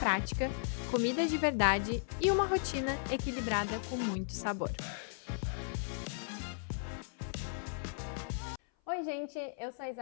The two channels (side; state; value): right; silent; 54 dB below the other